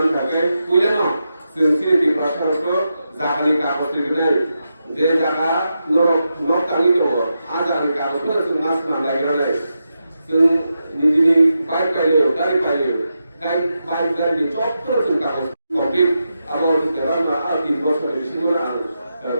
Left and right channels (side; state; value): both; inverted; correlation -0.87